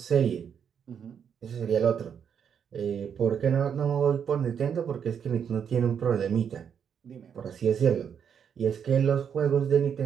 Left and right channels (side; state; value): left; quieter; 7.7 dB